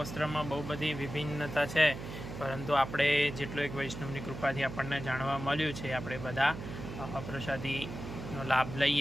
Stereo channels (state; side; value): noise; right; hum, 9 dB below the sound